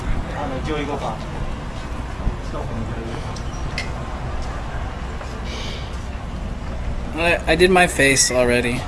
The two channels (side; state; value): both; identical; correlation 1.00